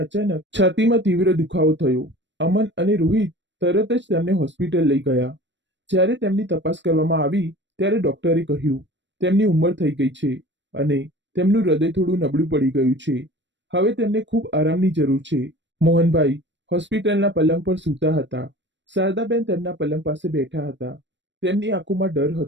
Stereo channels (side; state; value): left; late; 0.53 ms